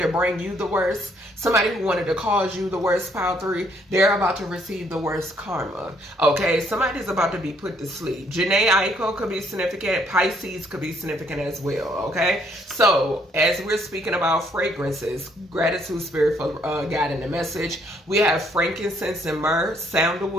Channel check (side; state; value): both; normal; correlation 0.67